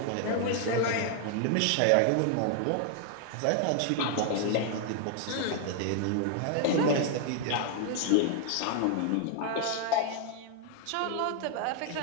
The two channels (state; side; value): different; both; correlation 0.00